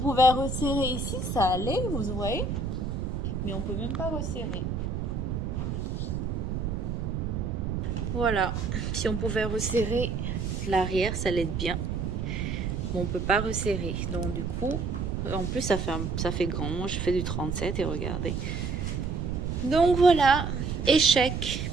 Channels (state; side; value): noise; right; rumble, 2 dB below the sound